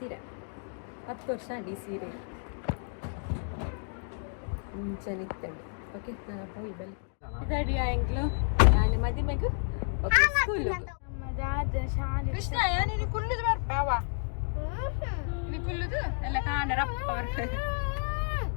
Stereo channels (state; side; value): silent; right; 57 dB below the other